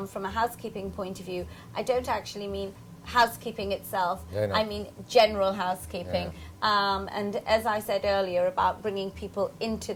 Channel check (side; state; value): both; identical; correlation 1.00